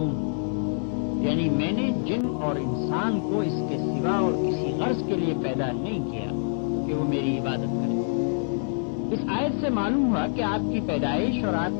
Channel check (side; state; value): right; silent; digital silence